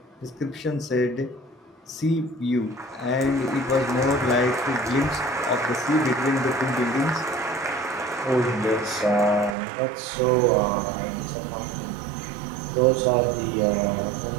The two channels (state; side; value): drops out; left; at 9.6 s